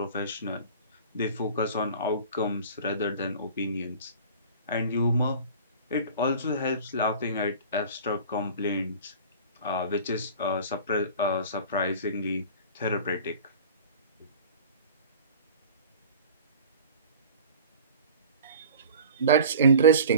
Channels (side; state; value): both; inverted; correlation -0.41